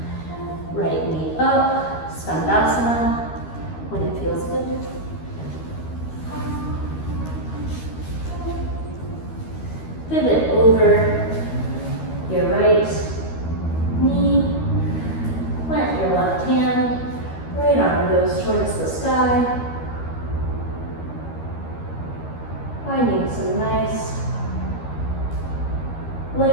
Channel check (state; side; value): late; right; 13 ms